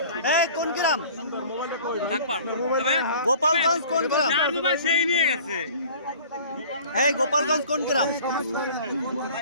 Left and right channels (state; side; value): inverted; both; correlation -0.46